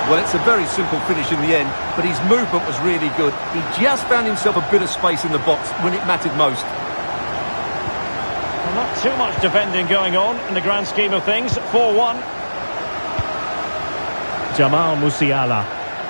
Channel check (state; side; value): inverted; both; correlation -1.00